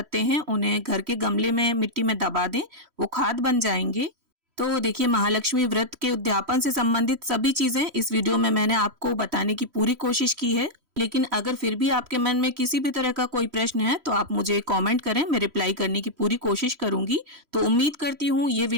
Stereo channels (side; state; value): left; late; 3.1 ms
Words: हैं उन्हें घर के गमले में मिट्टी में दबा दें, वो खाद बन जाएंगे। तो देखिए, महालक्ष्मी व्रत के उद्यापन से संबंधित सभी चीजें इस वीडियो में मैंने आपको बताने की पूरी कोशिश की है। लेकिन अगर फिर भी आपके मन में किसी भी तरह का कोई प्रश्न है तो आप मुझे कमेंट करें, मैं रिप्लाई करने की पूरी कोशिश करूंगी। तो उम्मीद करती हूँ ये